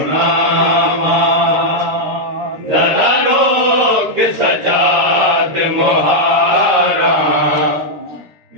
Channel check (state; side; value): late; left; 13 ms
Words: जरा रोक सजाद मुहारा